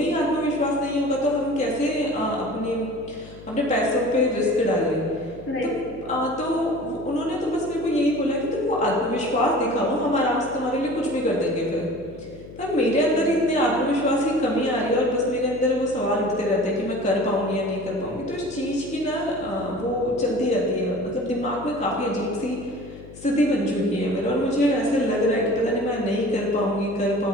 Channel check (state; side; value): noise; left; hum, 17 dB below the sound